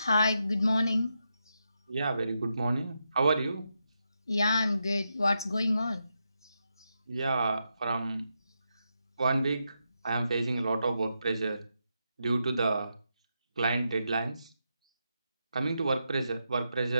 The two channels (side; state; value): both; inverted; correlation -0.84